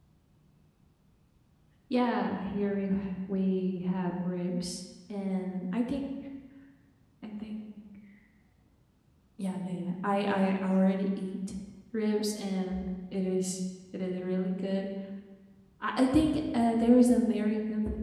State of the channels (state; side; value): identical; both; correlation 1.00